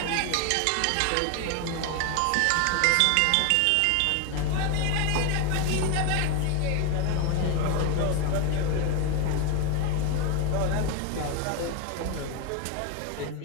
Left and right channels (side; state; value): both; different; correlation 0.00